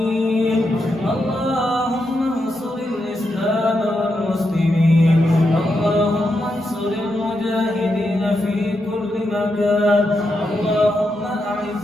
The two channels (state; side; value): normal; both; correlation 0.84